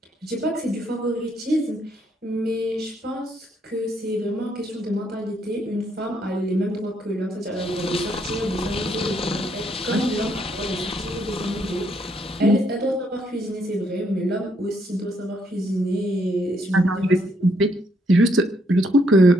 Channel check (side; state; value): both; normal; correlation 0.72